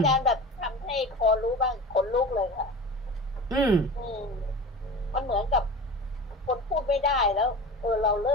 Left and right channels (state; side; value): normal; both; correlation 0.33